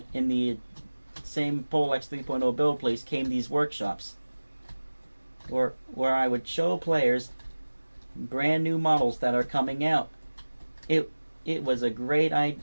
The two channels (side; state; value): both; inverted; correlation -1.00